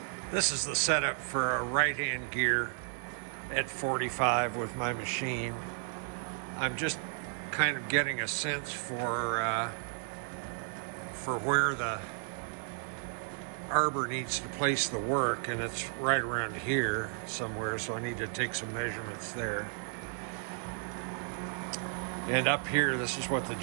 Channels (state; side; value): silent; left; 55 dB below the other